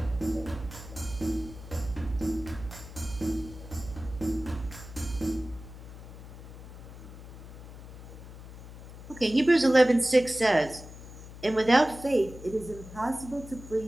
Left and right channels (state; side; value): noise; left; hum, 14 dB below the sound